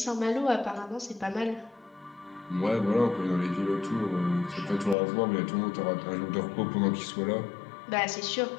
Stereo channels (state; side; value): drops out; right; at 5.0 s